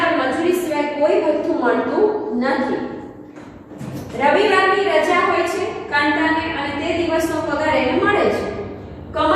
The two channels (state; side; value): identical; both; correlation 1.00